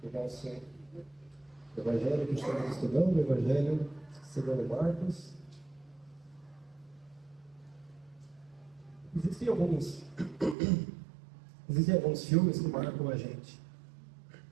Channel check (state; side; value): drops out; left; at 10.6 s